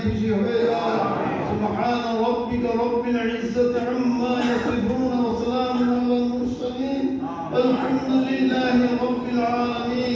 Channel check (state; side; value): identical; both; correlation 1.00